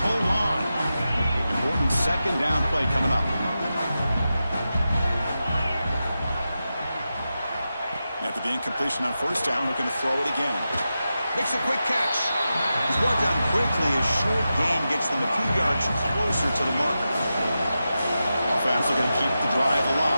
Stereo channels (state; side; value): inverted; both; correlation -0.91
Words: hold on. Important second down play coming up. After the incompletion on first down, looking to throw it again. Makes a quick catch. He's brought down quickly. A short gain gets them a few yards closer to the marker. Offense looking to keep the drive